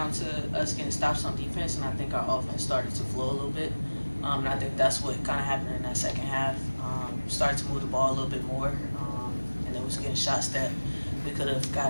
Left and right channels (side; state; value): both; inverted; correlation -1.00